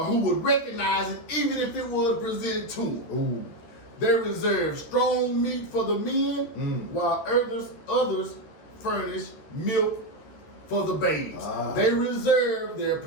who would recognize it even if it was presented to them. They reserve strong meat for the men, while others furnish milk for the babes. They reserve their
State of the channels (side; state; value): right; late; 14 ms